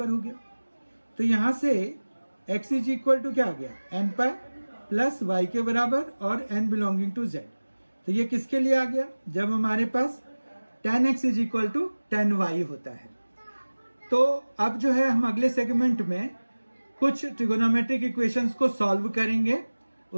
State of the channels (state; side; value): inverted; both; correlation -1.00